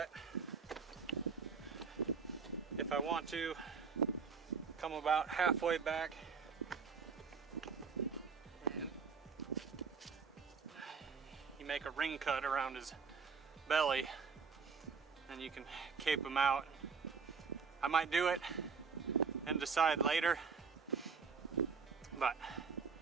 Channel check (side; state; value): left; quieter; 5.4 dB